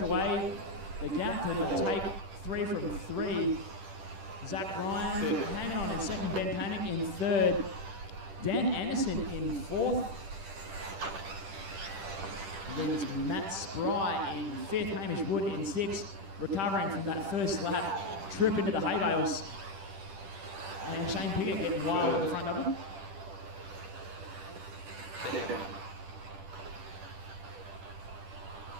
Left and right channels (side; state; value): left; late; 10 ms